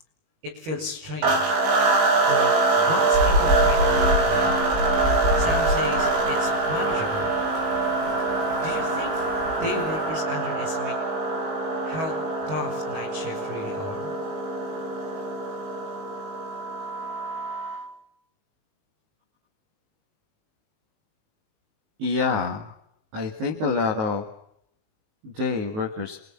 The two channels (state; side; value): late; left; 19 ms